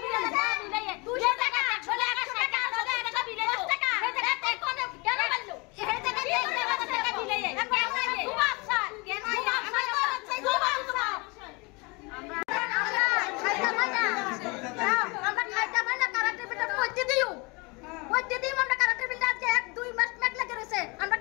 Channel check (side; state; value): right; quieter; 27.8 dB